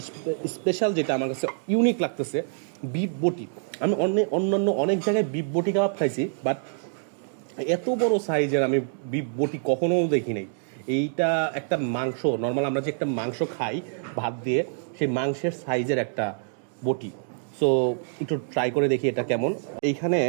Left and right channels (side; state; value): left; silent; digital silence